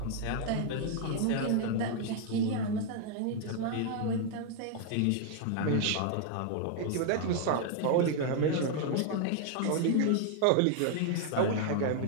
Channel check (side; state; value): both; different; correlation 0.00